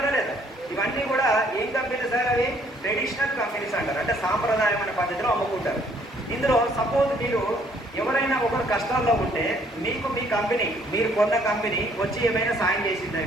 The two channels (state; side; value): normal; both; correlation 0.64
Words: లేదా? ఇవన్నీ కూడా ఏం కంపెనీలు సార్? అవి ట్రెడిషనల్ కంపెనీస్ అంటారు, అంటే సాంప్రదాయమైన పద్ధతిలో అమ్ముకుంటారు. ఇందులో సపోజ్ మీరు ఎవరైనా ఒకరు కష్టాల్లో ఉంటే మీకు మీ కంపెనీ, మీరు కొన్న కంపెనీ వచ్చి ఏమైనా సాయం చేసిందా?